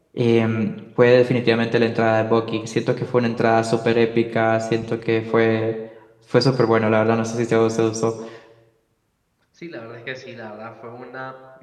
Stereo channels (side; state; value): both; identical; correlation 1.00